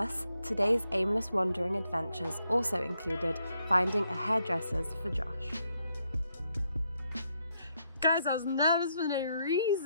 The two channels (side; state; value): both; inverted; correlation -0.78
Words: today's aimless wandering adventures also included finding a hairdresser's for Josh. Guys, I was nervous for no